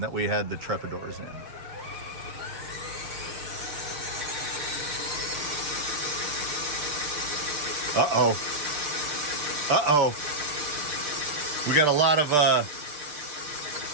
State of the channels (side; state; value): left; late; 6.7 ms